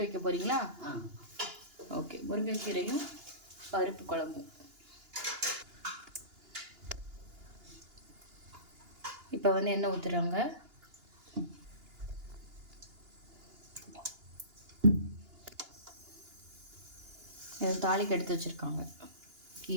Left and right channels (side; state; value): left; late; 2.9 ms